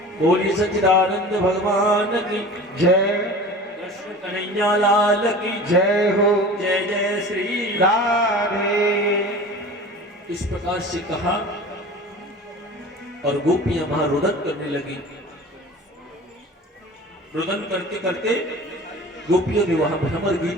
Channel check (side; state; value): both; normal; correlation 0.38